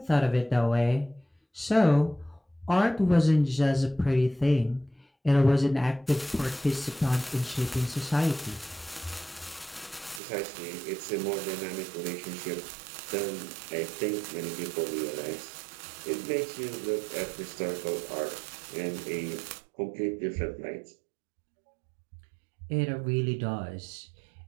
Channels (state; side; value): drops out; left; at 10.2 s